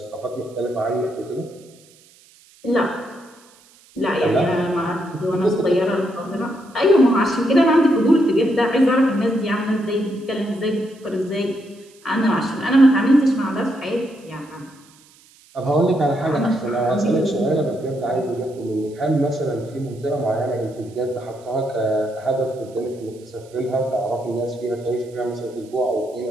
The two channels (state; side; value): noise; right; hiss, 28 dB below the sound